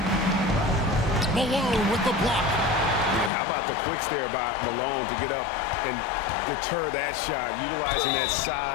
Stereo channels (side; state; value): right; drops out; at 3.3 s